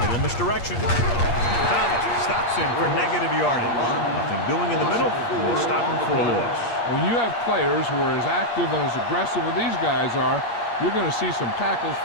Little misdirection. Thomas stops him for negative yardage. Nothing doing in the middle. We'll stop him for a loss. When you have players who are as active and as aggressive as these guys are, you're going to see some tackles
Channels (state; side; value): late; right; 8.5 ms